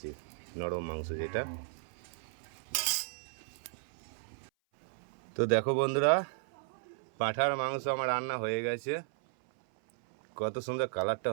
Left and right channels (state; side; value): silent; left; 55 dB below the other